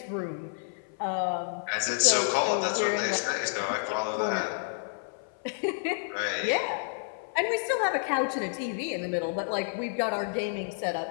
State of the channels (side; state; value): right; silent; 55 dB below the other